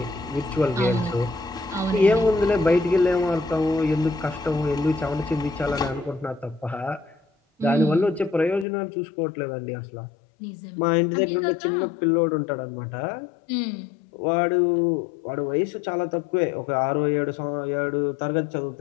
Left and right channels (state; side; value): drops out; right; at 8.7 s